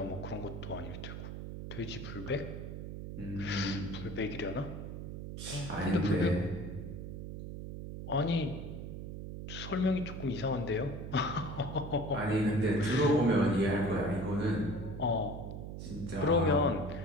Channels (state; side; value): noise; right; hum, 8 dB below the sound